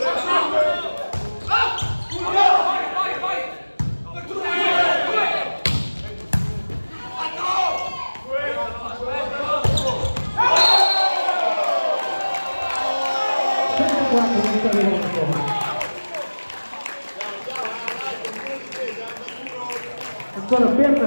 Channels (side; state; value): both; inverted; correlation -1.00